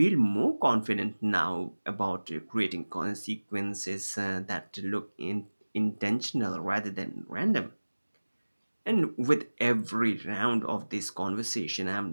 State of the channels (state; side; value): inverted; both; correlation -1.00